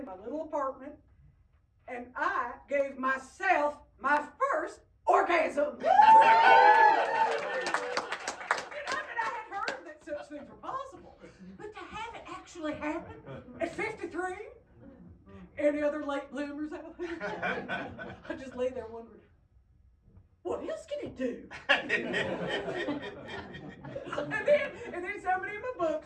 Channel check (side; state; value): both; identical; correlation 1.00